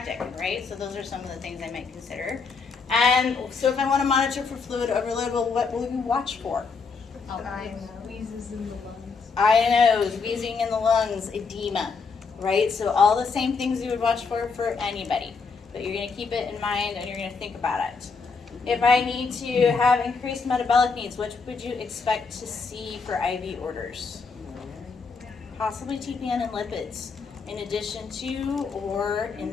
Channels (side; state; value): right; quieter; 5.0 dB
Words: right? So those are some of the things I might consider. And so if I want to monitor for fluid overload, well, what will you watch for? Wheezes in the lungs. Eye and nose, wheezing in the lungs, edema, right? So all the same things you would watch for anybody. But you're going to keep it in mind and you're going to think about it. If I need to have increased metabolic needs, which would you expect to see for IV orders? Possibly TPN and lipids, in addition to or